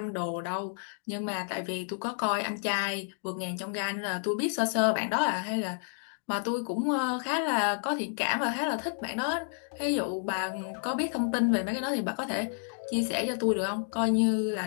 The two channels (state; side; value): silent; right; digital silence